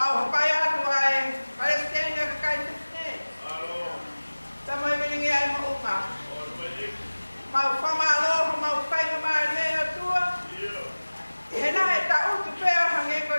payah tuai Palestina kekait ni. Sama ini ay mau umah. Mau pamalo mau payah mana tua. Hena tak untuk payah hangin kau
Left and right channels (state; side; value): inverted; both; correlation -1.00